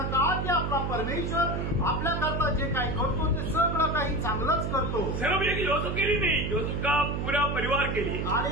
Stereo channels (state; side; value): noise; right; hum, 1 dB below the sound